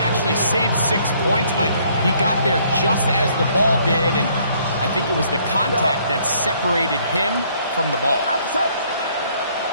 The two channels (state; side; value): inverted; both; correlation -0.64